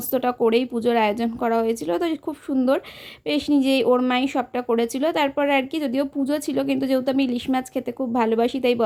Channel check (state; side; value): identical; both; correlation 1.00